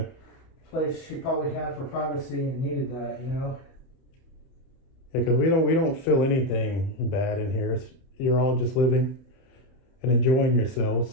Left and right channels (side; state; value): right; late; 31 ms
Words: place she probably had for privacy and needed that, Yeah, because we don't feel anything bad in here. You're all just living and enjoying yourselves.